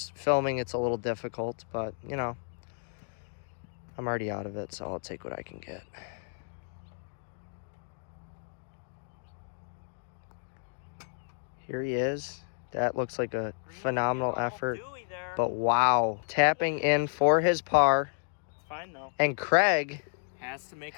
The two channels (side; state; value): right; silent; digital silence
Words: filming it's a little difficult, but you know, I'm already out of it, so I'll take what I can get. Here he is. That looks like a phenomenal effort, but wow, tapping in for his par. It's fine though. And Craig has to